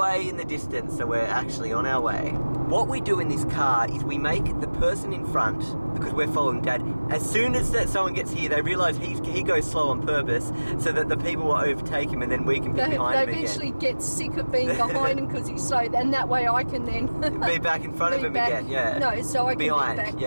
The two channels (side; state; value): both; inverted; correlation -1.00